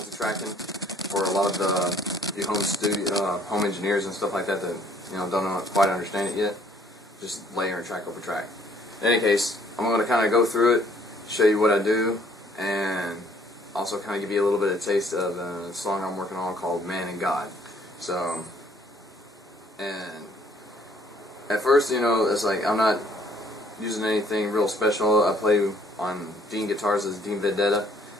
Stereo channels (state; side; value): normal; both; correlation 0.61